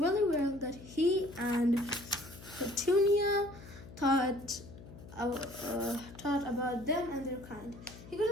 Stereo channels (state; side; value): noise; left; hum, 17 dB below the sound